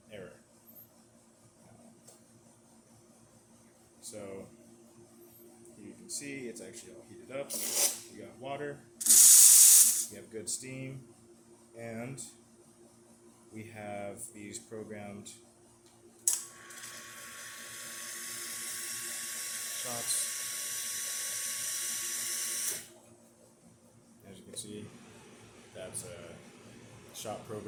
error. So here you can see it's actually all heated up. We got water, we have good steam, and we have these programmed shots. As you can see, that's a shot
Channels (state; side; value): identical; both; correlation 1.00